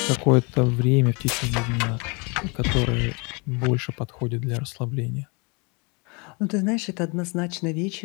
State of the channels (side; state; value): right; quieter; 31.0 dB